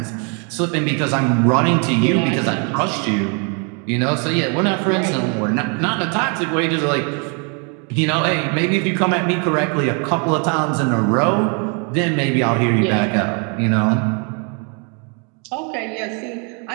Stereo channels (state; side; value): quieter; left; 36.3 dB